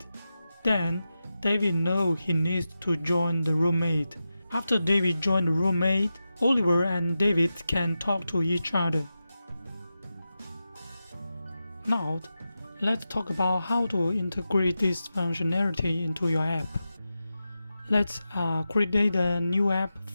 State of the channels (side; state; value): both; inverted; correlation -0.92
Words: Then David knows he needs to join the roommate. After David joined the roommate, Oliver and David can talk to each other. Now, let's talk about how to integrate this functionality into your app. Let's create a new app